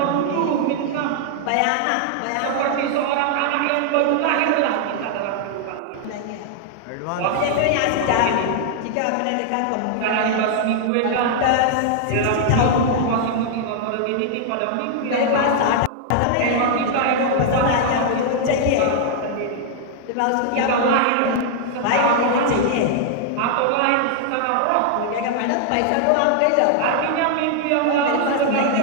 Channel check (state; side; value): different; both; correlation -0.01